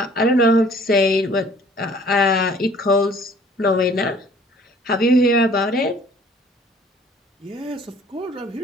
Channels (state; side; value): normal; both; correlation 0.55